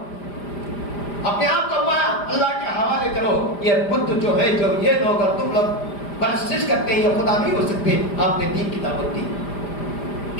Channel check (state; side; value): late; right; 5.0 ms